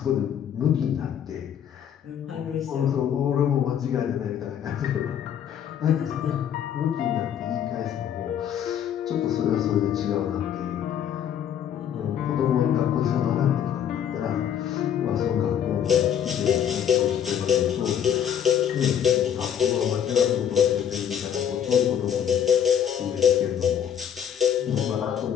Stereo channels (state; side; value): quieter; right; 9.1 dB